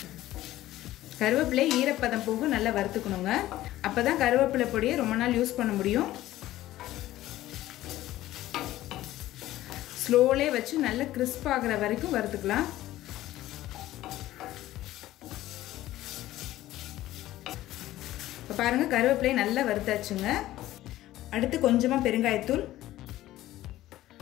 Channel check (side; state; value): right; quieter; 15.1 dB